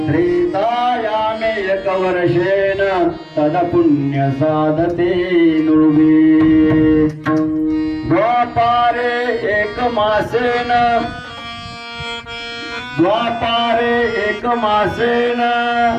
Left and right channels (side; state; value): both; identical; correlation 1.00